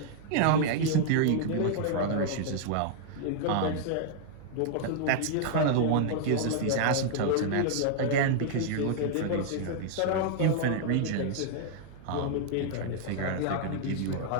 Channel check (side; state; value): both; different; correlation -0.01